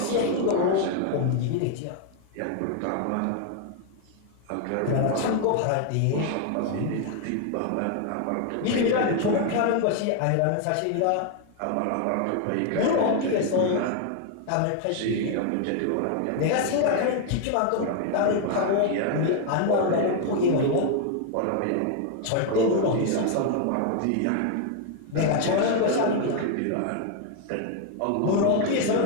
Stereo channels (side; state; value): both; different; correlation 0.00